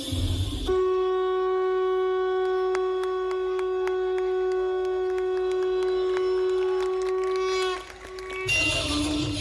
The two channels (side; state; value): both; identical; correlation 1.00